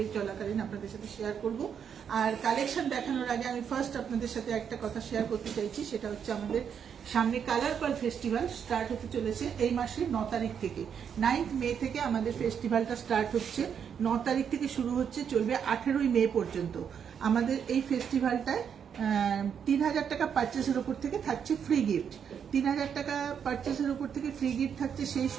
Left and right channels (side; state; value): left; quieter; 7.7 dB